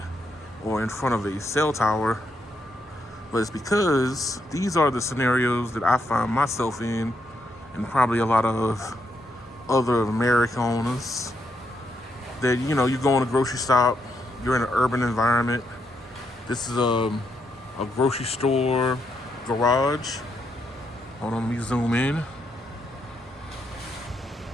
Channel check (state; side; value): normal; both; correlation 0.79